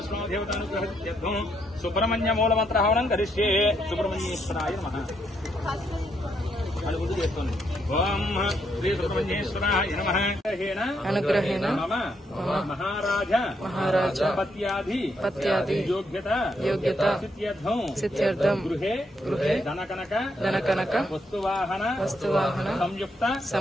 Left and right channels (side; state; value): both; normal; correlation 0.76